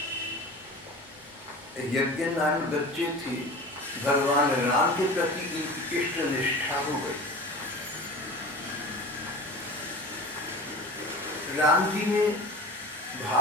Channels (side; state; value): both; normal; correlation 0.35